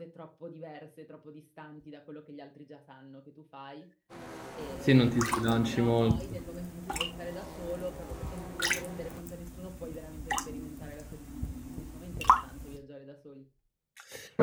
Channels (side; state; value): both; identical; correlation 1.00